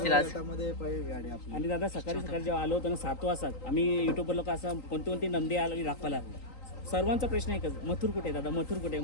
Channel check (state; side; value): late; right; 3.9 ms